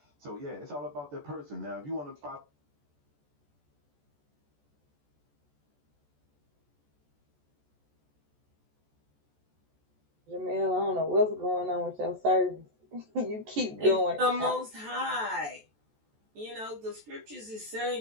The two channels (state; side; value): late; left; 14 ms